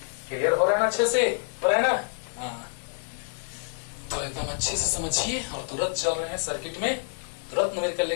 क्लियर हो रहा है ना, अच्छे से हो रहा है ना? हाँ, तो एकदम अच्छे से समझिए। और तुरंत चल रहे हैं सर्किट में, तुरंत न्यूमेरिकल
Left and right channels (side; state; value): right; silent; digital silence